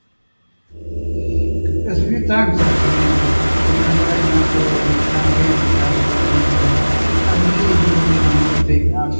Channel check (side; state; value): both; inverted; correlation -1.00